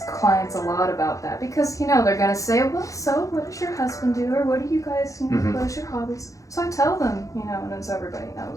clients a lot about that because, you know, they're going to say, well, so what does your husband do? Or what do you guys, you know, what is your hobbies? So I tell them, you know, and so everybody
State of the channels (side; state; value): right; late; 0.16 ms